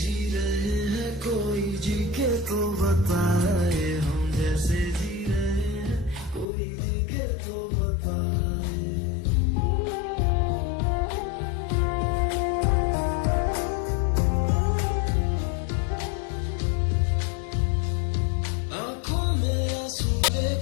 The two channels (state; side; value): drops out; right; at 6.5 s